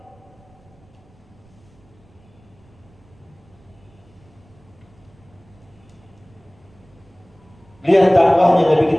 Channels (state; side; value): noise; right; rumble, 29 dB below the sound